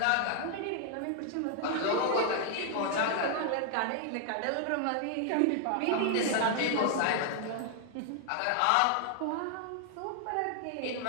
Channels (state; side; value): different; both; correlation 0.00